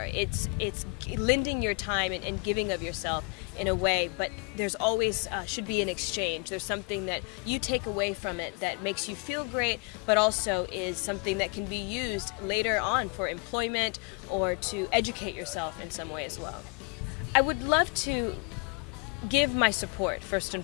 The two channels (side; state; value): right; quieter; 32.4 dB